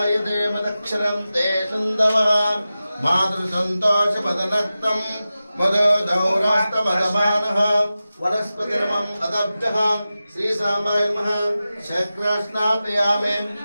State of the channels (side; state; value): both; inverted; correlation -0.94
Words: देवदक्षरं ते सन्दवः मातृसन्तोषमदनक्तं मदोदौरास्तमदमानः वनस्पतिरमम् अदब्धः श्री सामाय नमः शक्रास्नापयामि